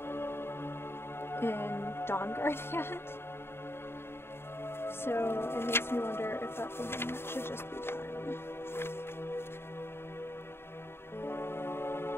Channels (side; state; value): right; late; 0.11 ms